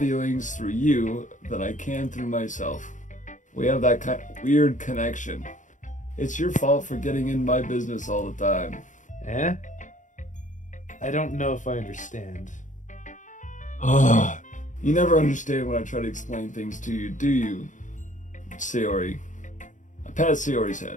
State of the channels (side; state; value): right; late; 0.36 ms